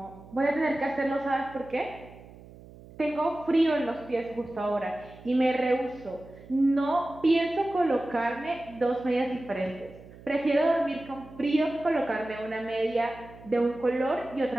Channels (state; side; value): noise; right; hum, 20 dB below the sound